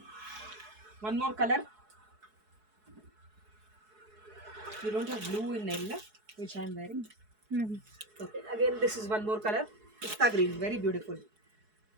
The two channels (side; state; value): left; late; 4.7 ms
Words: One more color. You don't have blue in Nella, which I am wearing. Okay, again this is one more color. Pista green, very beautiful.